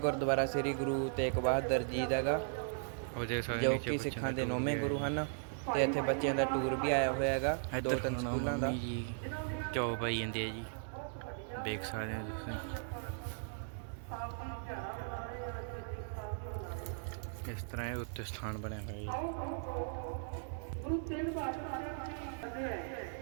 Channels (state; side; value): silent; left; digital silence